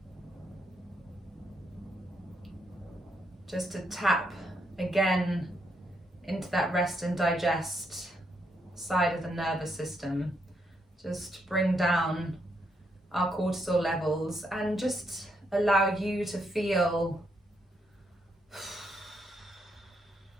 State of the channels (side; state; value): both; normal; correlation 0.77